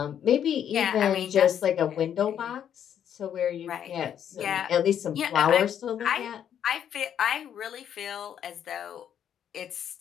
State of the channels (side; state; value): right; quieter; 9.3 dB